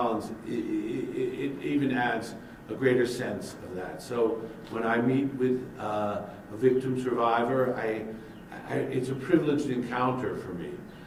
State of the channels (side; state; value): both; identical; correlation 1.00